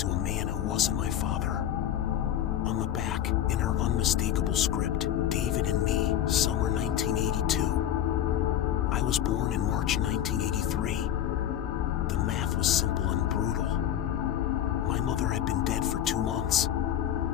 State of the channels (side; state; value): right; quieter; 11.0 dB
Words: to a man who wasn't my father. On the back, in her unmistakable script, David and me, summer 1982. I was born in March 1983. The math was simple and brutal. My mother had been dead for 2 months.